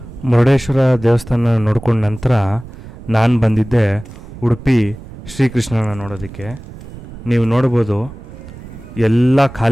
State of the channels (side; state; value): right; noise; rumble, 15 dB below the sound